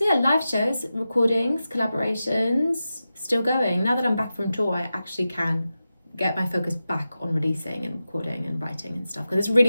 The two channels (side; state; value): both; inverted; correlation -0.92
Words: yeah, live shows, recordings, collaborations, still going. Now that I'm back from tour, I actually can get my focus back on releasing and recording and writing and stuff. Because it's really